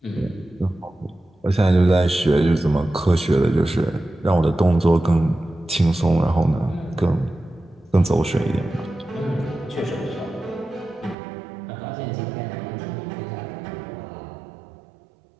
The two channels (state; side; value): drops out; left; at 11.2 s